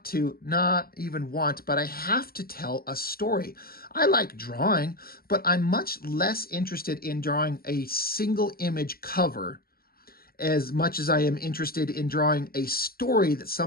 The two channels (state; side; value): late; right; 0.44 ms